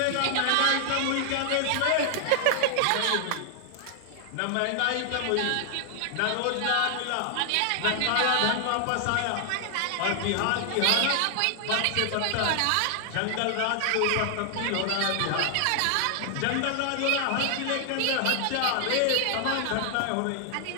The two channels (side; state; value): both; different; correlation 0.00